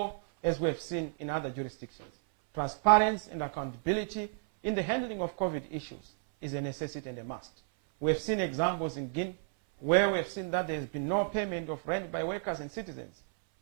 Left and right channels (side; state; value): left; silent; 56 dB below the other